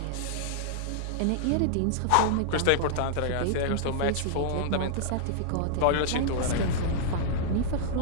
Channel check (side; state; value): both; different; correlation -0.01